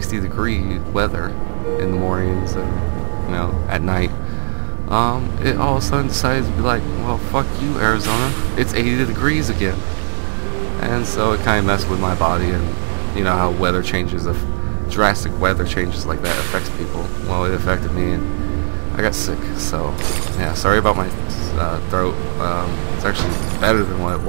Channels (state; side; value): silent; left; digital silence